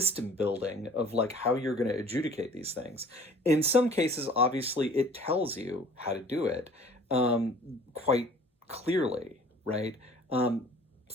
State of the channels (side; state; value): both; normal; correlation 0.50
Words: building of like how you're going to adjudicate these things. In some cases, obviously, it tells you how to do it, quite clearly, right?